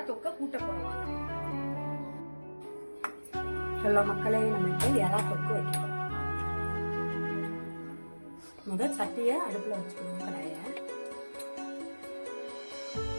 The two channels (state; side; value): inverted; both; correlation -1.00